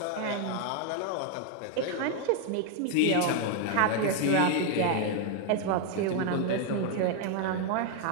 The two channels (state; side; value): different; both; correlation 0.00